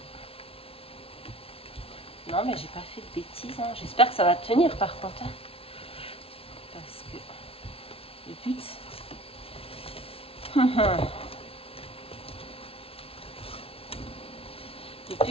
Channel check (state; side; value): late; right; 0.27 ms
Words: Non, mais j'ai pas fait de bêtises. Hein. J'espère que ça va tenir par contre. Hein. Parce que le but... le